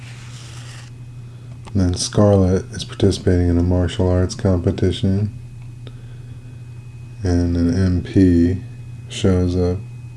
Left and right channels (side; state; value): both; identical; correlation 1.00